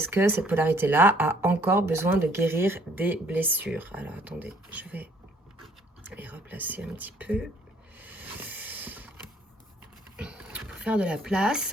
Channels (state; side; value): normal; both; correlation 0.61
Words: que cette polarité-là a encore besoin de guérir des blessures. Alors, attendez, je vais les replacer un petit peu pour faire de la place.